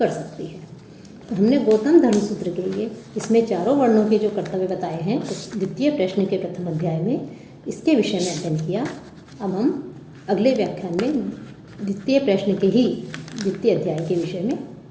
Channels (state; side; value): identical; both; correlation 1.00